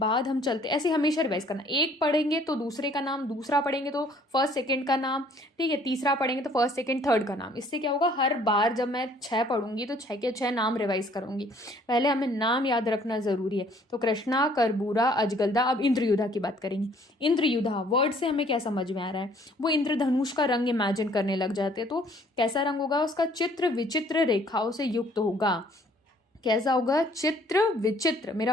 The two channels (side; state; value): both; normal; correlation 0.59